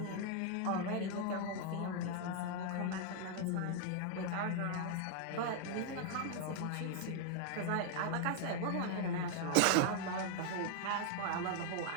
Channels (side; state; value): both; different; correlation 0.00